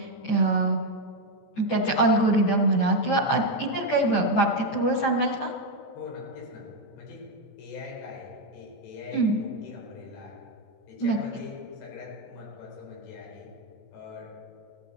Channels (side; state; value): right; late; 14 ms